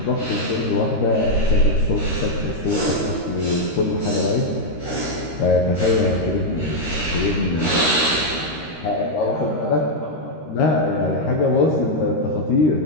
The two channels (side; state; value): right; late; 13 ms